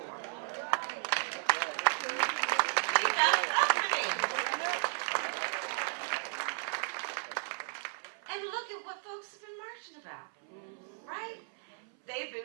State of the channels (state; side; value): silent; left; 55 dB below the other